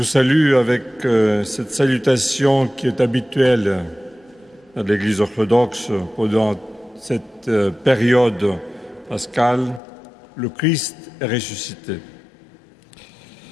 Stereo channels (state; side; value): drops out; right; at 9.8 s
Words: salue avec cette salutation qui est habituelle à l'Église orthodoxe pendant cette période pascale, le Christ est ressuscité.